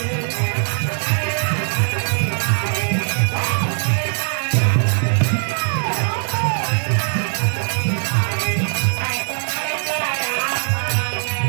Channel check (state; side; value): silent; left; digital silence